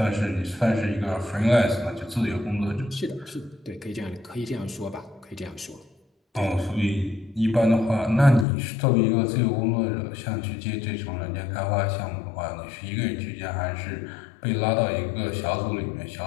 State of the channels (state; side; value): drops out; right; at 8.5 s